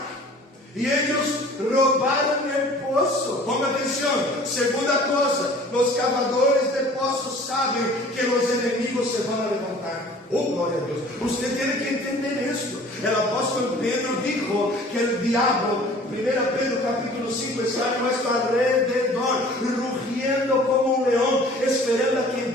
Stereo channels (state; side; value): normal; both; correlation 0.48